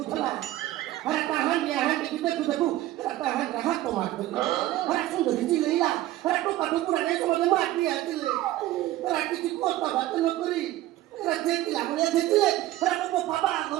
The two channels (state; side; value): quieter; left; 15.3 dB